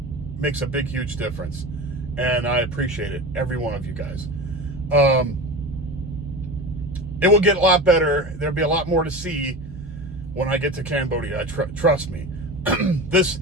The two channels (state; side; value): normal; both; correlation 0.29